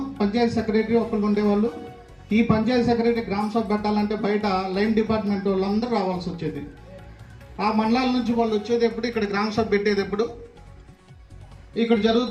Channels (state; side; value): identical; both; correlation 1.00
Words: పంచాయతీ సెక్రటరీ ఒక్కళ్ళు ఉండేవాళ్ళు. ఈ పంచాయతీ సెక్రటరీ గ్రామ సభ పెట్టాలంటే బయట లైన్ డిపార్ట్మెంట్ వాళ్ళందరూ రావాల్సి వచ్చేది. ఆ మండలాల నుంచి వాళ్ళు వచ్చేది ఎప్పుడు, ఇక్కడ గ్రామ సభ పెట్టేది ఎప్పుడు, ఇక్కడ